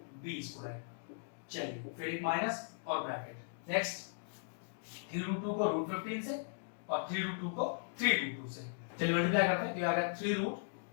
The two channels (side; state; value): right; silent; digital silence